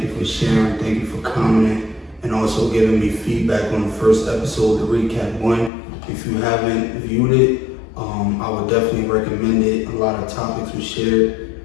you for sharing, thank you for commenting, and also giving me feedback on the first episode, the Recap 1. If you haven't viewed it, I would definitely recommend it. A lot of topics were shared.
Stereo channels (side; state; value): right; drops out; at 5.7 s